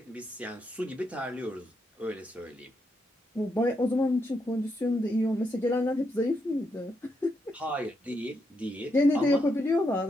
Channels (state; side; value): normal; both; correlation 0.80